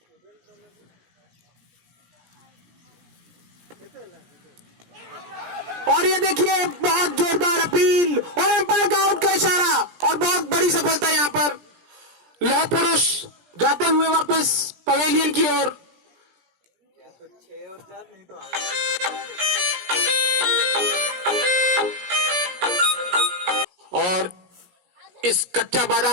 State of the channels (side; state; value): left; late; 17 ms